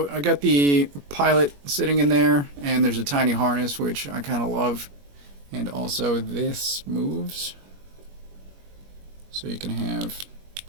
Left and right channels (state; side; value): late; left; 21 ms